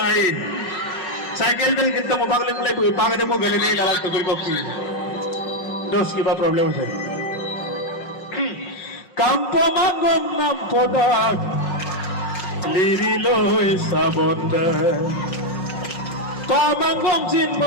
cycle del kita mo bagle mulai pagade mo gale ne galak to ko dos ki ba problem है kampo mangom nam podak lirilo sabonda pamangom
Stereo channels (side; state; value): right; late; 5.4 ms